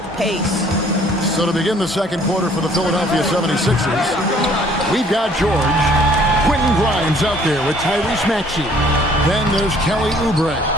pace. So to begin the second quarter for the Philadelphia 76ers, we've got George. Quentin Grimes out there with Tyrese Maxey. Then there's Kelly Oubre.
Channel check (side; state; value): both; normal; correlation 0.58